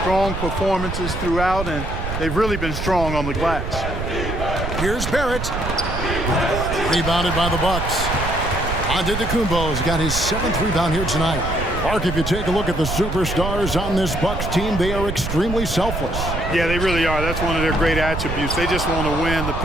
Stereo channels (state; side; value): noise; right; rumble, 5 dB below the sound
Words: strong performances throughout, and they've really been strong on the glass. Here's Barrett. Rebounded by the Bucks. Antetokounmpo's got his 7th rebound here tonight. Mark, if you take a look at the superstars on this Bucks team, they are extremely selfless. Yeah, they really are. That's one of their great attributes. They just want to win. The